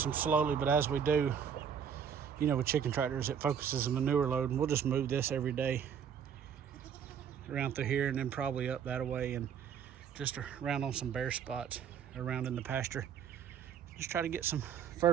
them slowly, but as we do, you know, with chicken tractors, it focuses the manure load, and we'll just move this every day around through here and then probably up that way and just around on some bare spots around in the pasture. Just try to get some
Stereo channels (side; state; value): left; quieter; 7.8 dB